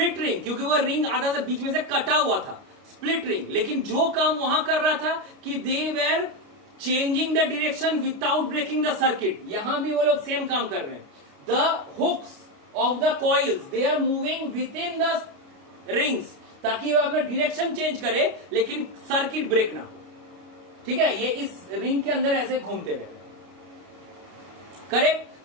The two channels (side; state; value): left; late; 29 ms